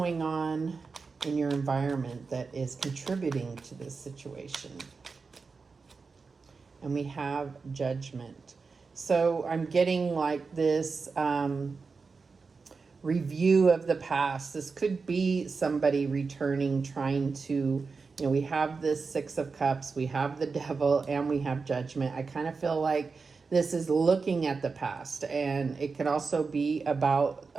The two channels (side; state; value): left; quieter; 4.6 dB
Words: on in your environment that is contributing to this situation? And we have Judgment. So I'm getting like this review of the past. This could be somebody returning, trying to, we have this Six of Cups, we have the Devil, and we have Judgment. I kind of feel like this is looking at the past, and it could also be about